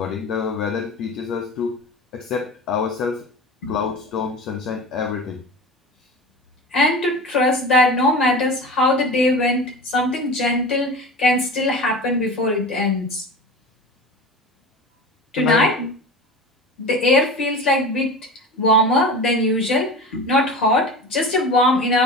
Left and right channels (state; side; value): normal; both; correlation 0.32